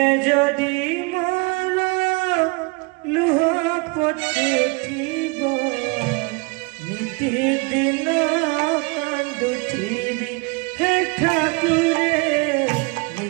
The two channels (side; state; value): left; quieter; 28.3 dB